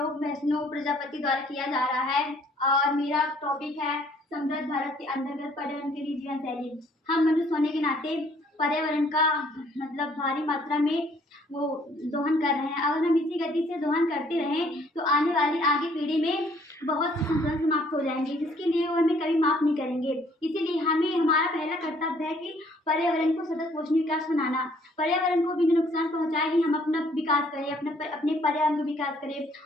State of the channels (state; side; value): normal; both; correlation 0.62